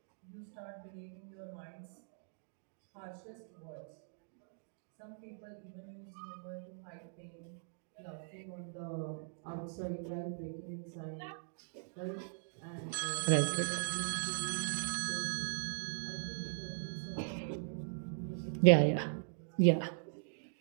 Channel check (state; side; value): silent; left; digital silence